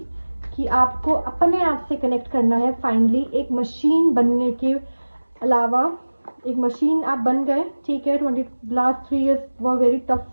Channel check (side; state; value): both; inverted; correlation -1.00